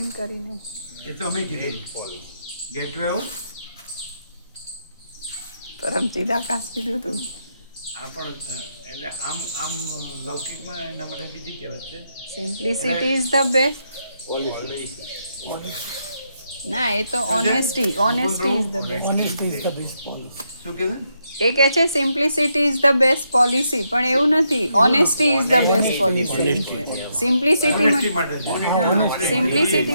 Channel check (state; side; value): inverted; both; correlation -0.79